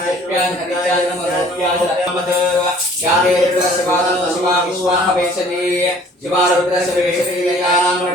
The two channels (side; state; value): both; normal; correlation 0.53